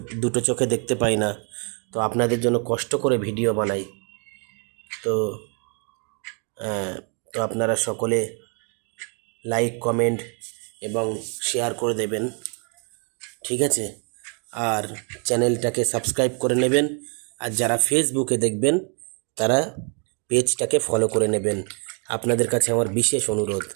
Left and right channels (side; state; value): left; quieter; 38.3 dB